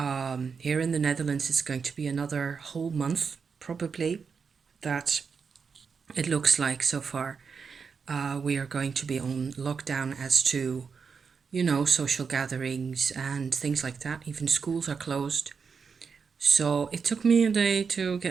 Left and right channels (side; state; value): left; quieter; 5.7 dB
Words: Here in the Netherlands, it's going to be another whole month, probably, that it looks like so far. We are going to be on lockdown as to, social gatherings and things like that. Even schools are closed. So it took me a day to